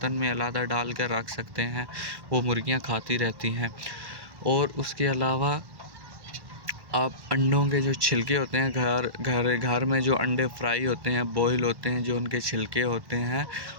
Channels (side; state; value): left; late; 1.1 ms